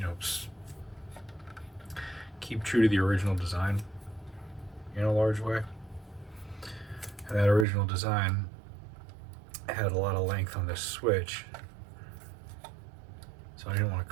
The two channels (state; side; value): drops out; left; at 7.7 s